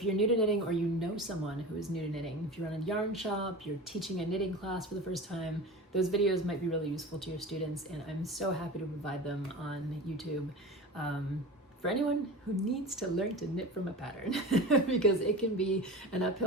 you're new to knitting or you know someone who is new to knitting, if you run a yarn shop, you're teaching a knitting class for the first time, those videos might be really useful to your students, and I'm so happy to provide them on YouTube. For anyone who needs to learn to knit from a pattern, because it can be an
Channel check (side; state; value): both; normal; correlation 0.32